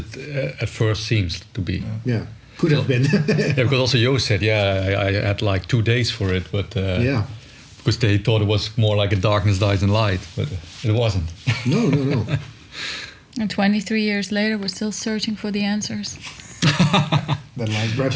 at first seems to be. Yeah. Could have been. Yeah, because also Jo said, I had like 2 days for it, but Yeah. because they thought it was more like a darkness dies in light, but it wasn't. No. And 23 years later, we're still searching for the answers. that like Perhaps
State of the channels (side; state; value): both; identical; correlation 1.00